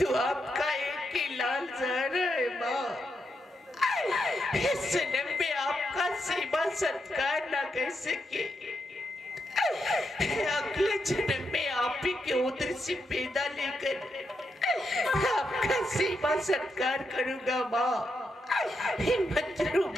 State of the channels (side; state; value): both; normal; correlation 0.83